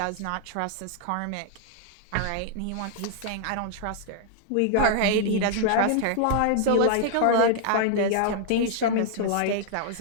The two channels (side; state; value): both; different; correlation 0.00